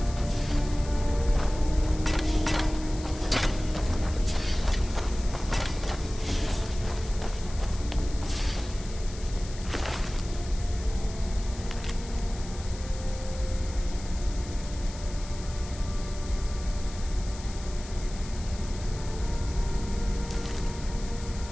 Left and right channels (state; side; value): noise; left; hiss, 16 dB below the sound